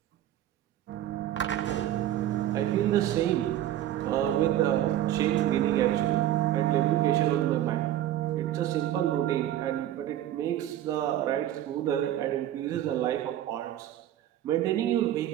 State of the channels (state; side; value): quieter; left; 12.5 dB